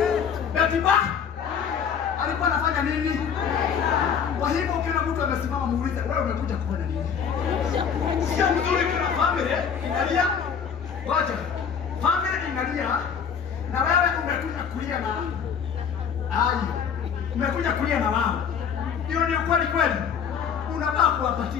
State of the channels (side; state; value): right; quieter; 7.2 dB